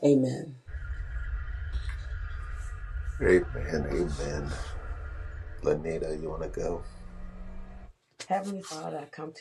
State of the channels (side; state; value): both; identical; correlation 1.00